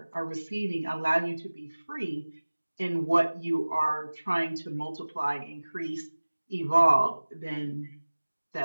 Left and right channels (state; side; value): inverted; both; correlation -1.00